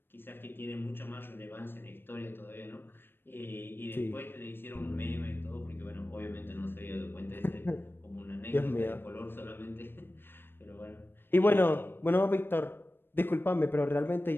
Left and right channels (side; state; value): right; late; 0.10 ms